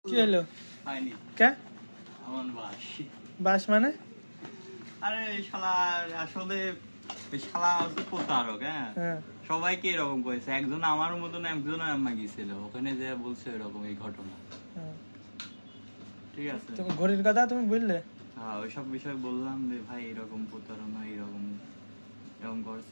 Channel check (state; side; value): inverted; both; correlation -1.00